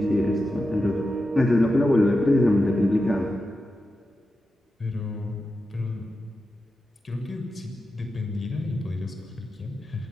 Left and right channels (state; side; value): normal; both; correlation 0.90